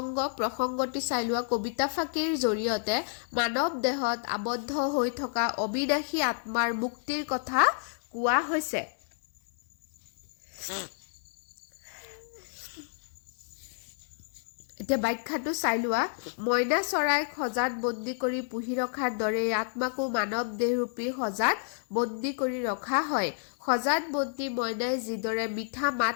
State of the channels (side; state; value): right; silent; 58 dB below the other